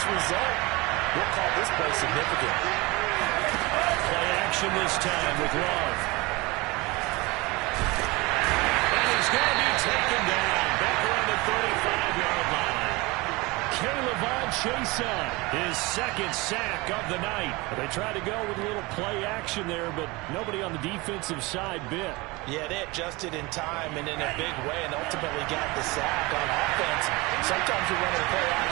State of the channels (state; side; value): quieter; left; 23.8 dB